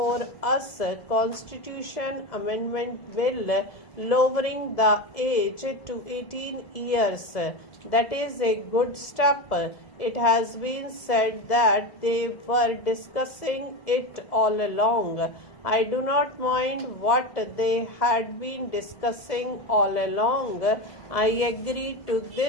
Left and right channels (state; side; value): late; right; 1.7 ms